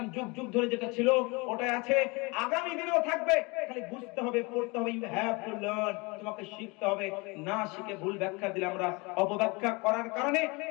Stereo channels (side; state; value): right; quieter; 27.1 dB